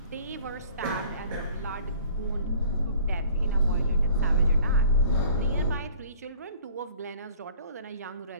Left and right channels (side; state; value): both; inverted; correlation -0.50